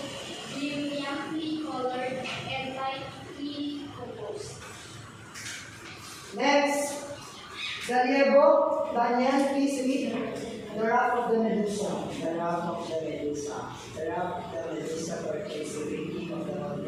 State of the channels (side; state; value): both; identical; correlation 1.00